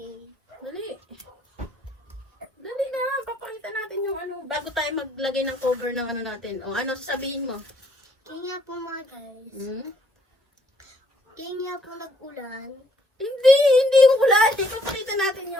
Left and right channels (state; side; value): normal; both; correlation 0.68